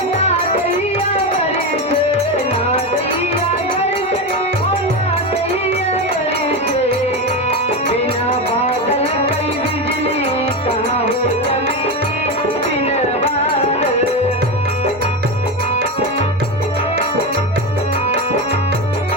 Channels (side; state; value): both; normal; correlation 0.16